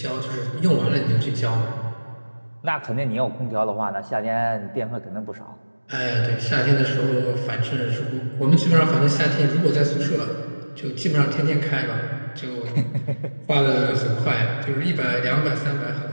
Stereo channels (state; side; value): inverted; both; correlation -1.00